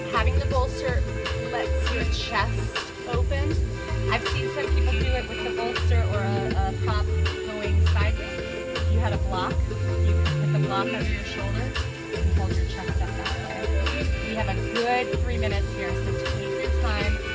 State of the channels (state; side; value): identical; both; correlation 1.00